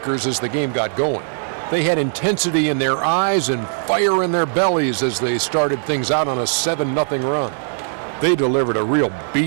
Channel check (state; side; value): silent; left; digital silence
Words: as the game got going. They had intensity in their eyes and fire in their bellies as they started things out on a 7-0 run. They delivered a real